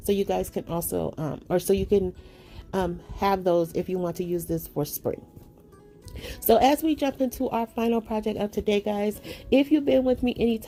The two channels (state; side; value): identical; both; correlation 1.00